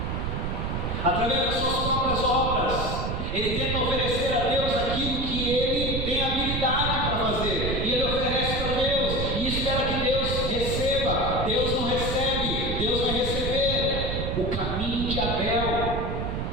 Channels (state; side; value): noise; right; rumble, 2 dB below the sound